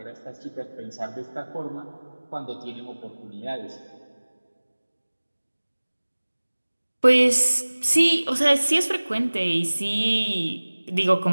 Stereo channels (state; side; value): inverted; both; correlation -1.00